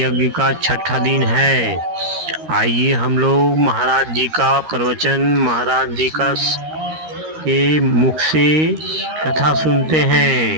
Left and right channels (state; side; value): late; left; 13 ms